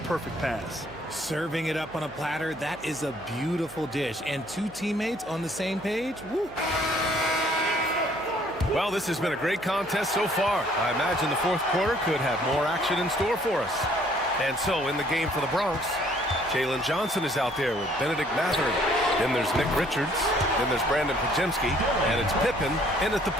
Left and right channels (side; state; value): right; noise; hum, 23 dB below the sound